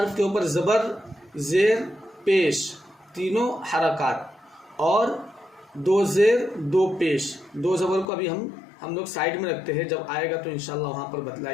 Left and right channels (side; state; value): right; drops out; at 8.1 s